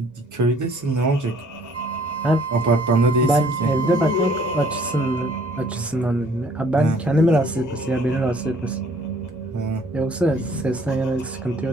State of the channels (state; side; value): normal; both; correlation 0.59